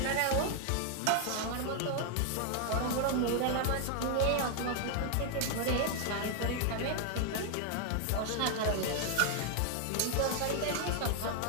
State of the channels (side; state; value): both; different; correlation 0.01